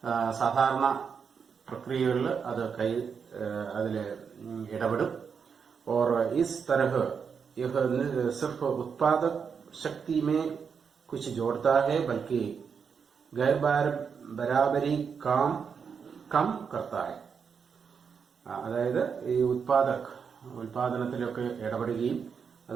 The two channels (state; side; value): quieter; left; 6.3 dB